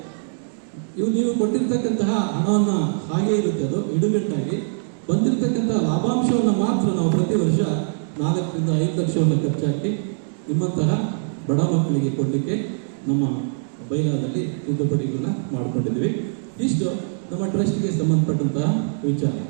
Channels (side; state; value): left; silent; digital silence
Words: ನೀವು ಕೊಟ್ಟಿರ್ತಕ್ಕಂತಹ ಹಣವನ್ನು ಹಾಗೆ ಇರುತ್ತೆ, ಅದು ಇಡುಗಟ್ಟಾಗಿ ಬಂದಿರತಕ್ಕಂಥ ಲಾಭಾಂಶವನ್ನು ಮಾತ್ರ ನಾವು ಪ್ರತಿ ವರ್ಷ 4 ರಿಂದ 5 ಲಕ್ಷವನ್ನು ಖರ್ಚಾಕಿ ನಿಮ್ಮಂತಹ ಬಡ ಮಕ್ಕಳಿಗೆ ಕೊಡಲಿಕ್ಕೆ ನಮ್ಮ ಬೈಲಾದಲ್ಲಿ ತಿದ್ದುಪಡಿಗಳನ್ನ ಮಾಡಿಕೊಂಡಿದ್ದೀವಿ. ಇಷ್ಟು ನಮ್ಮ ಟ್ರಸ್ಟ್ಗೆ ಸಂಬಂಧಪಟ್ಟಂತಹ ವಿಚಾರ.